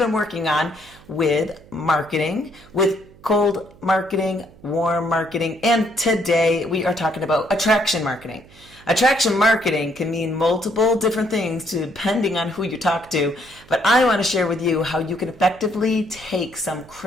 working on with marketing, with cold marketing, warm marketing, and today we are talking about attraction marketing. Attraction marketing can mean multiple different things depending on who you talk to, but I want to share with you how you can effectively take some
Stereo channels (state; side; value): noise; right; hum, 24 dB below the sound